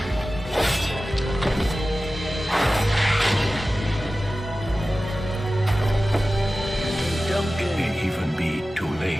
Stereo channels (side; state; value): both; normal; correlation 0.95